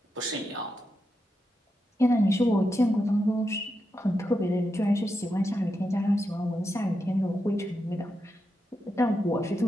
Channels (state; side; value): normal; both; correlation 0.86